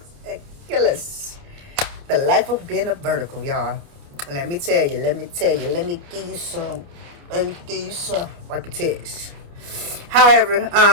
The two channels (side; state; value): left; late; 29 ms